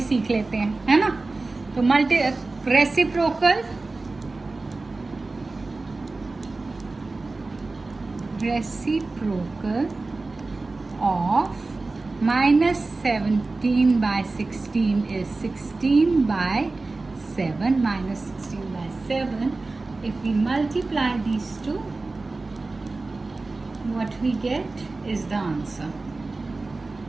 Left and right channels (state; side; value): quieter; left; 3.5 dB